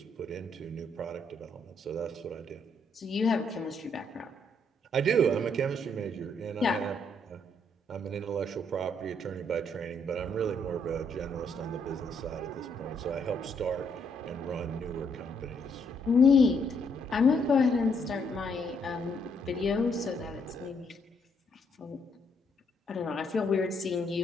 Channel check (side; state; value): both; normal; correlation 0.72